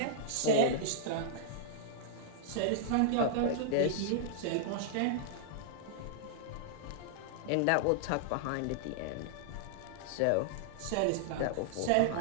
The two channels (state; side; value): different; both; correlation -0.01